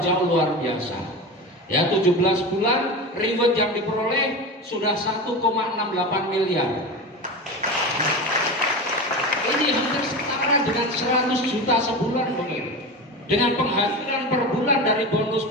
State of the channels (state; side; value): normal; both; correlation 0.26